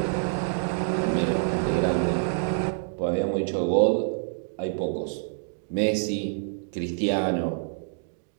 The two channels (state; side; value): silent; left; digital silence